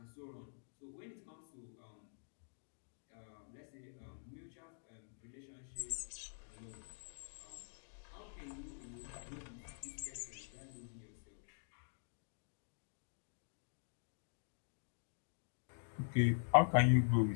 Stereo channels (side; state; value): right; silent; digital silence